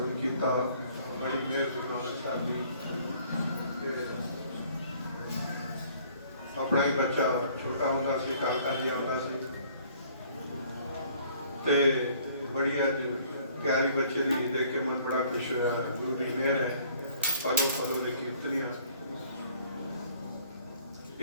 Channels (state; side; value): inverted; both; correlation -0.58